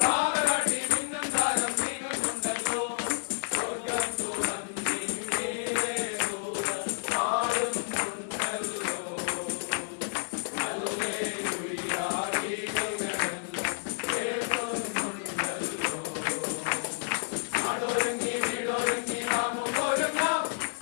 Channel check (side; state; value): right; silent; digital silence